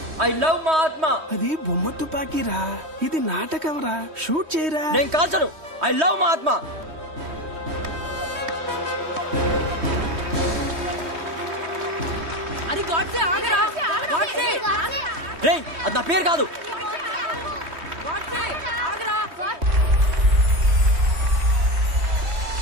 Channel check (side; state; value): left; late; 3.2 ms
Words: ఐ లవ్ మా ఆత్మ. అది బొమ్మ తుపాకీరా, ఇది నాటకం రా. షూట్ చేయరా. నేను కాల్చను. ఐ లవ్ మా ఆత్మ. అది గాడ్సే, ఆగరా. గాడ్సే. రేయ్, అది నా పేరు కాదు. గాడ్సే, ఆగరా.